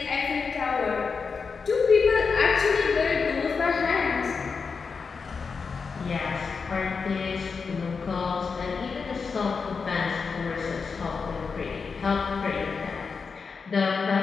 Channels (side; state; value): right; quieter; 5.2 dB